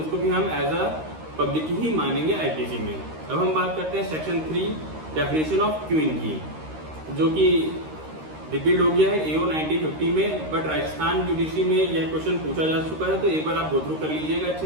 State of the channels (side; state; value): left; late; 13 ms